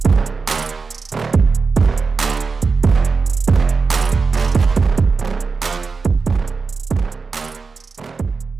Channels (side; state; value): left; quieter; 4.7 dB